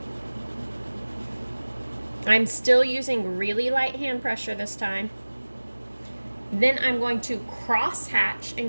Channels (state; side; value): inverted; both; correlation -1.00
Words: I'm still using really light hand pressure this time. Then I'm going to cross hatch